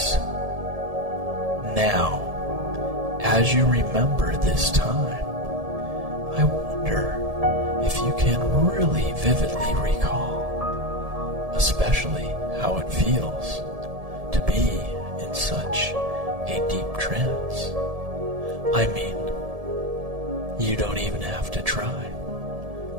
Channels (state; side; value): late; left; 1.7 ms